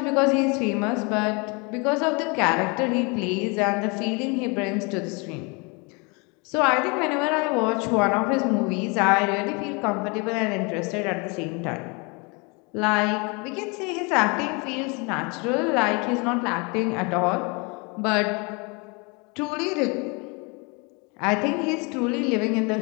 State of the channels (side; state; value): right; quieter; 30.3 dB